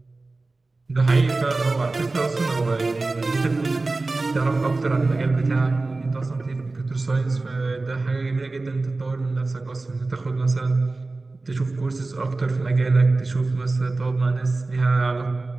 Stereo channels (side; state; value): left; quieter; 3.4 dB